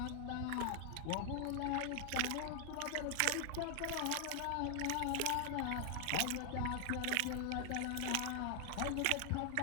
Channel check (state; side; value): different; both; correlation 0.00